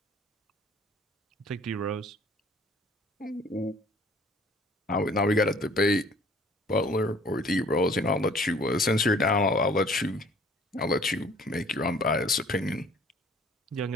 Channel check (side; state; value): both; normal; correlation 0.54